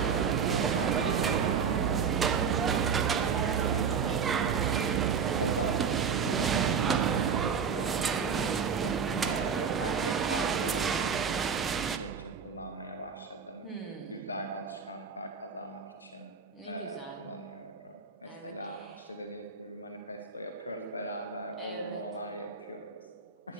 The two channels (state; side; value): quieter; left; 6.3 dB